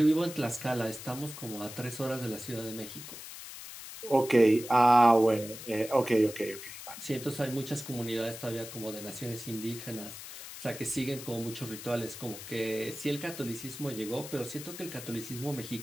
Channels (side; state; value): left; noise; hiss, 12 dB below the sound